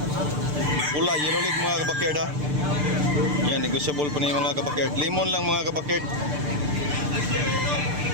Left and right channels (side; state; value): left; late; 6.7 ms